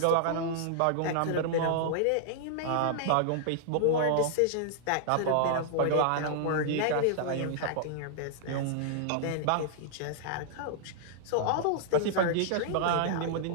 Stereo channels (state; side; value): different; both; correlation -0.01